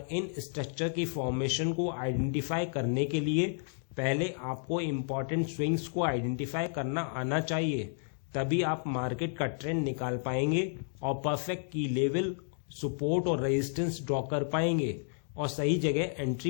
इन स्ट्रक्चर की फॉर्मेशन को आइडेंटिफाई करने के लिए पहले आपको इम्पॉर्टेंट स्विंग्स को आइडेंटिफाई करना आना चाहिए, तभी आप मार्केट का ट्रेंड निकाल पाएंगे और परफेक्ट की लेवल, सपोर्ट और रेजिस्टेंस ड्रॉ कर पाएंगे और सही जगह एंट्री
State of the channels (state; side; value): silent; right; digital silence